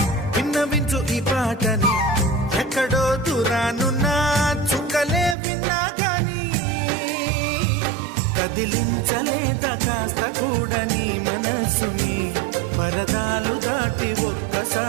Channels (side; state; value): left; drops out; at 5.4 s